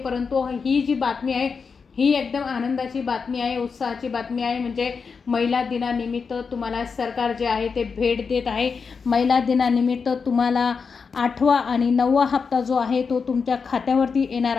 ही जी बातमी आहे ही एकदम आनंदाची बातमी आहे, उत्साहाची बातमी आहे. म्हणजे महिला दिनानिमित्त तुम्हाला सरकार जे आहे ते भेट देत आहे. महिला दिनानिमित्त तुम्हाला 8वा आणि 9वा हप्ता जो आहे तो तुमच्या खात्यावरती येणार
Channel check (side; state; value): right; quieter; 5.4 dB